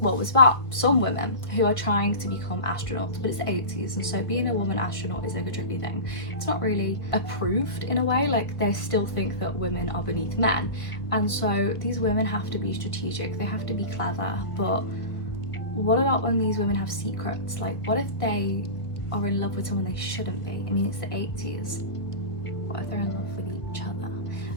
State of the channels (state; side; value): late; right; 1.3 ms